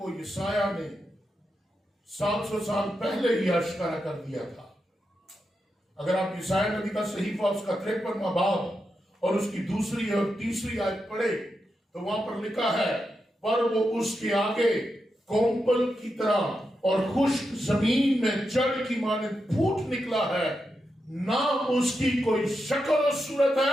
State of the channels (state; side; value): normal; both; correlation 0.87